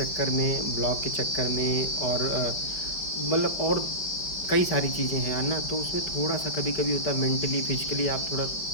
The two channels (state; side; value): late; right; 5.4 ms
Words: में, ब्लॉग के चक्कर में और मतलब और कई सारी चीज़ें हैं ना, तो उसमें थोड़ा सा कभी कभी होता है मेंटली फिजिकली आप थोड़ा